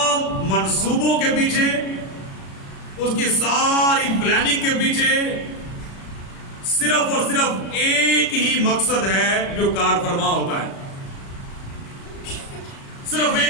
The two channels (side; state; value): right; late; 36 ms